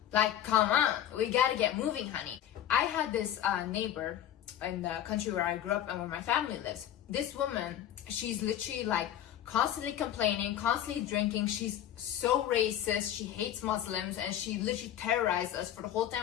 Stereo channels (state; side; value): quieter; right; 11.1 dB